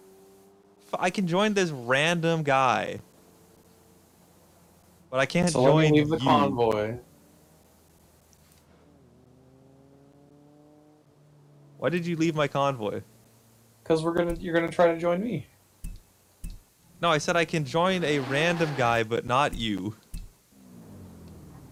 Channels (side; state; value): both; identical; correlation 1.00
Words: I can join this random guy, but I can't So let join me leave the you. convoy. Why did you leave my convoy? Cause you're gonna try to join me. No, I said I can join a random guy, but not you.